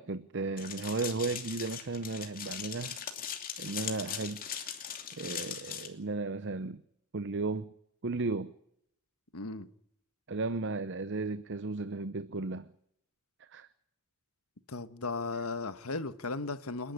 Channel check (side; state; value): both; normal; correlation 0.06